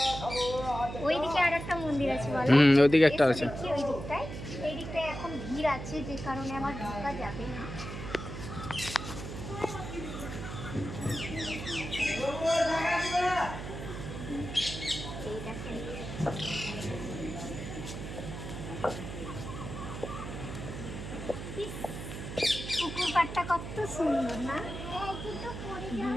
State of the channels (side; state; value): right; noise; hum, 8 dB below the sound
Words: ওইদিকে আর একটা মন্দির আছে বলো। ওইদিকে একটা আছে। ওই দিকটায় এই দিকটায় এখন ভিড় আছে, যে কারণে আমার ঢোকা যাবে না। এই দেখেন পুকুর পাড়টা কত সুন্দর না?